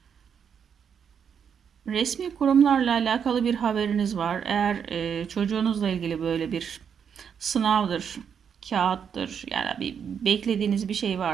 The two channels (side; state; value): left; quieter; 7.4 dB